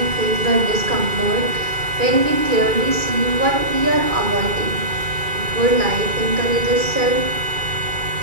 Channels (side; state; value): left; late; 2.3 ms